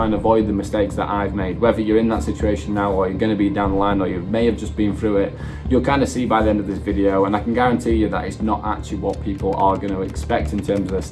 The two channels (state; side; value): identical; both; correlation 1.00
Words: and avoid the mistakes that I've made. Whether you're in that situation now or you're going to be down the line or you may have just been through it, you'll kind of see by the end of this video, and I can guarantee you that it's not actually what people are going to expect in terms of their